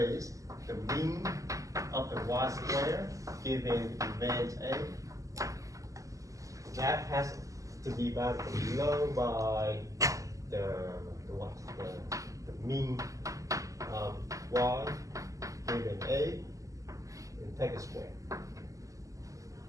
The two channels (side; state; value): left; late; 0.16 ms